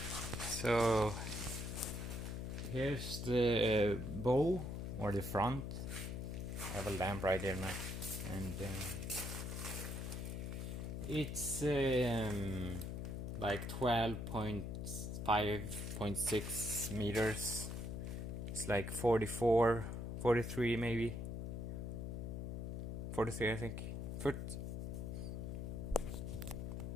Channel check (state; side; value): noise; left; hum, 4 dB below the sound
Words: So here's the bow or the front. I have a lamp right there now, and it's like 12.5.6 meters. It's like 44, 43 maybe. 43 I think. Foot.